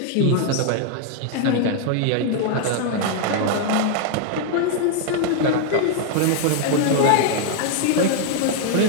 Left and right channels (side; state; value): both; different; correlation 0.00